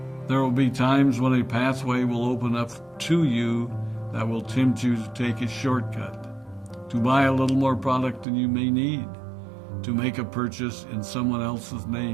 There will be times when a pathway will open up to you that will tempt you to take a shortcut, to buy a little more product than you may need, to make a purchase in someone else's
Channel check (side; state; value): left; drops out; at 8.2 s